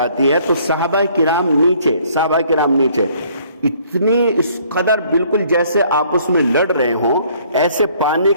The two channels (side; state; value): both; inverted; correlation -0.61